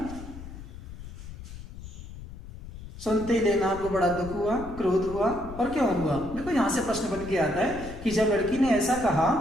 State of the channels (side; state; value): left; noise; rumble, 12 dB below the sound